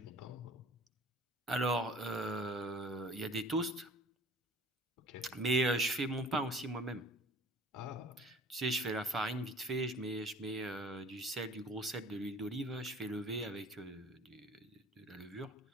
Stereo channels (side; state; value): both; normal; correlation 0.49